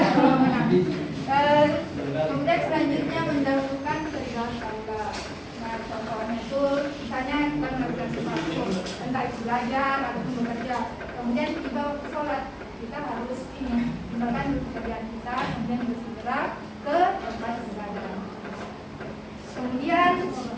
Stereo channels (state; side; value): identical; both; correlation 1.00